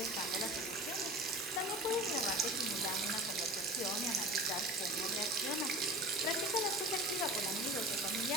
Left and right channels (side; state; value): both; normal; correlation 0.36